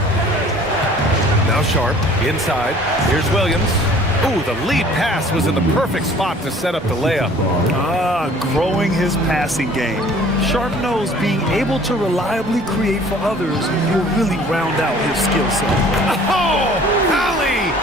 Now Sharp, inside. Here's Williams. Ooh, the lead pass was in the perfect spot to set up the layup. Growing his passing game. Sharp knows being able to reliably create for others will really round out his skill set. Oh, Allie,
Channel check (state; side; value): normal; both; correlation 0.51